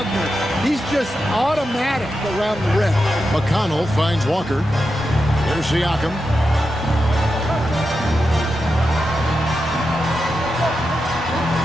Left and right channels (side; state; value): both; normal; correlation 0.88